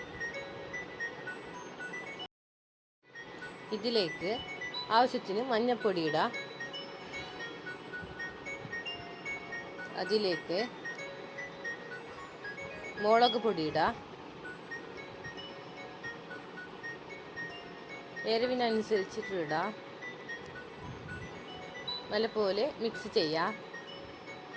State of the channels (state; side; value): identical; both; correlation 1.00